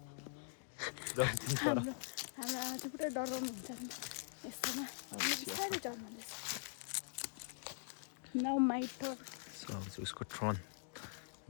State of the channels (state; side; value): silent; right; digital silence